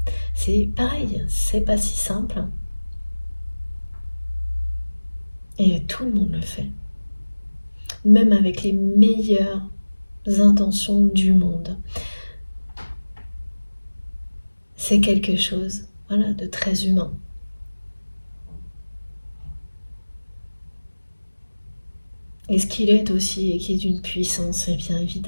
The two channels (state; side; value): inverted; both; correlation -1.00